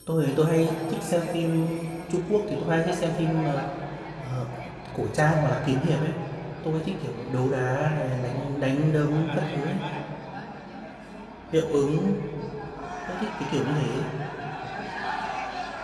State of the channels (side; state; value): both; identical; correlation 1.00